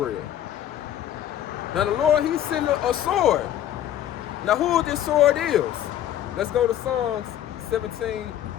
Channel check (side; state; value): right; quieter; 11.5 dB